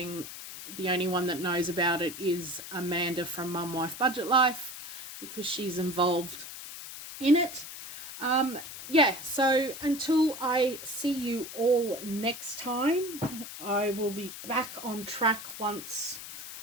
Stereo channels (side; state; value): left; noise; hiss, 11 dB below the sound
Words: The only one that knows about it is Amanda from Mum Wife Budget Life, because she's involved in it. Yeah, so until I see you all next time, I will be back on track once